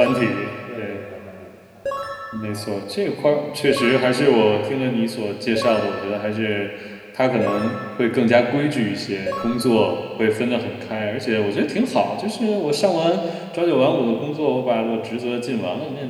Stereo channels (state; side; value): identical; both; correlation 1.00